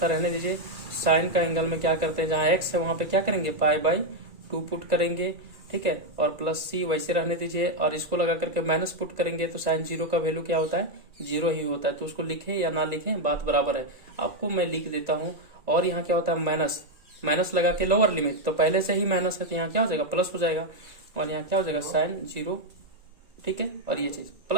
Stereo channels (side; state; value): left; late; 1.9 ms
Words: रहने दीजिए। साइन का एंगल में क्या करते हैं, जहाँ x है वहां पे क्या करेंगे π/2 पुट करेंगे, ठीक है। और प्लस c वैसे रहने दीजिए, और इसको लगा करके माइनस पुट करेंगे, तो साइन 0 का वैल्यू क्या होता है 0 ही होता है। तो उसको लिखें या ना लिखें बात बराबर है, आपको मैं लिख देता हूँ। और यहाँ क्या होता है माइनस, माइनस लगा के लोअर लिमिट, तो पहले से ही माइनस है तो यहाँ क्या हो जाएगा प्लस हो जाएगा, और यहाँ क्या हो जाएगा साइन 0, ठीक है। और ये चीज